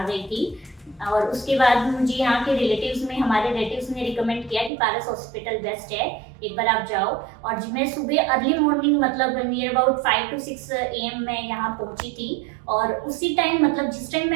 गई थी। और उसके बाद मुझे यहाँ के हमारे रिलेटिव्स ने रिकमेंड किया कि पारस हॉस्पिटल बेस्ट है, एक बार आप जाओ। और मैं सुबह अर्ली मॉर्निंग मतलब नियर अबाउट 5 to 6 AM मैं यहाँ पहुँची थी। और उसी टाइम मतलब जिस टाइम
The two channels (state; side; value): drops out; left; at 4.7 s